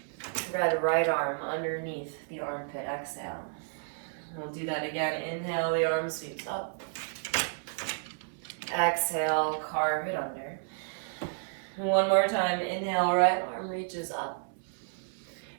Grab the right arm underneath the armpit. Exhale. We'll do that again. Inhale, the arm sweeps up. Exhale, carve it under. One more time. Inhale, right arm reaches up.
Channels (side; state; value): left; silent; digital silence